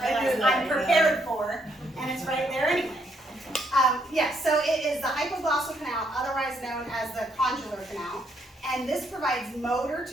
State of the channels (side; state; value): both; normal; correlation 0.73